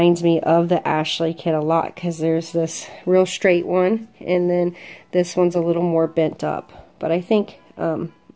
me of the Ashley kit a lot, because there's this real straight one, and then this one's a little more bent up. But I think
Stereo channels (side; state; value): both; identical; correlation 1.00